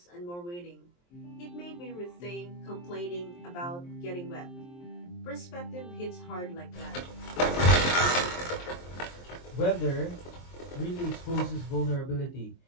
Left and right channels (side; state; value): right; late; 23 ms